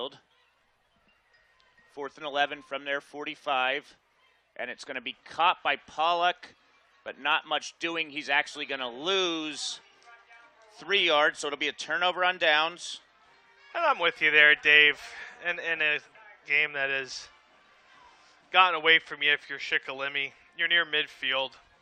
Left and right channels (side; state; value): both; identical; correlation 1.00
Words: 4th and 11 from their 45. And it's going to be caught by Pollock, but not much doing. He's actually going to lose 3 yards, so it'll be a turnover on downs. And I'm with you there, Dave. In a game that has gotten away from you if you're Shikellamy, you're near midfield.